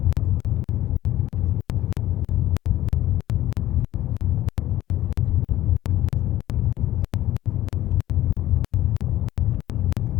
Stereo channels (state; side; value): quieter; right; 14.3 dB